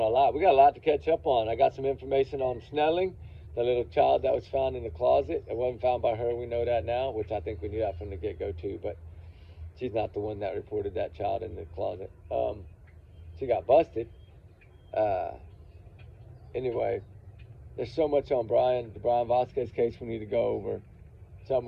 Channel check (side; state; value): both; identical; correlation 1.00